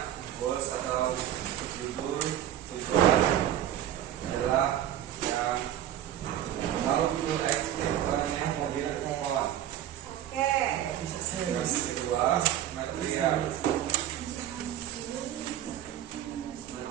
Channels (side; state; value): left; quieter; 11.6 dB